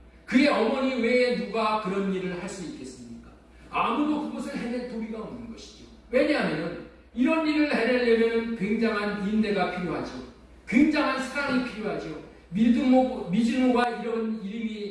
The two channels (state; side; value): identical; both; correlation 1.00